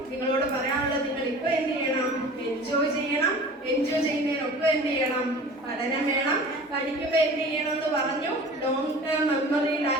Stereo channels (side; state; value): both; normal; correlation 0.41